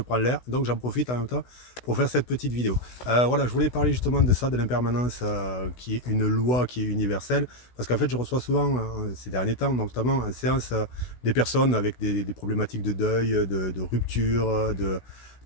l'air, donc j'en profite en même temps pour faire cette petite vidéo. Voilà, je voulais parler justement de ça, de l'impermanence qui est une loi qui est universelle, parce qu'en fait je reçois souvent ces derniers temps, notamment en séance, des personnes avec des problématiques de deuil, de rupture,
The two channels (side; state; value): right; late; 16 ms